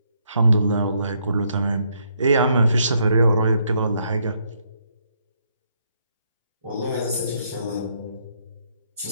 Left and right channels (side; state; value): both; inverted; correlation -0.73